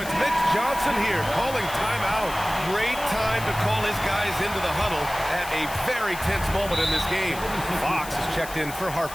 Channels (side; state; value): left; noise; hiss, 13 dB below the sound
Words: Mitch Johnson here calling timeout. Great time to call his guys into the huddle at a very tense moment in this game. Fox is checked in for